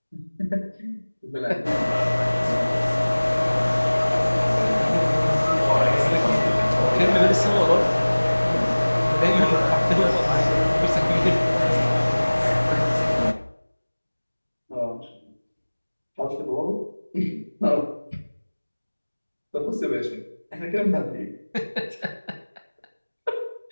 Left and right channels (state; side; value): inverted; both; correlation -1.00